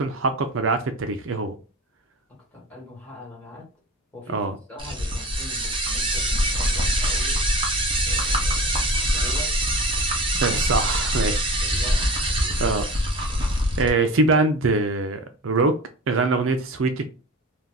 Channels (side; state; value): both; normal; correlation 0.35